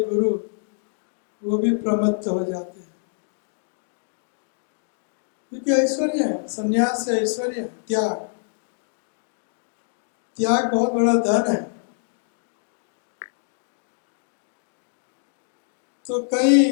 गुरु वो भी प्रमत्त हो जाते हैं, क्योंकि ऐश्वर्य है। सन्यास से ऐश्वर्य है, त्याग। त्याग बहुत बड़ा धन है। तो कई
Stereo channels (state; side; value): silent; right; digital silence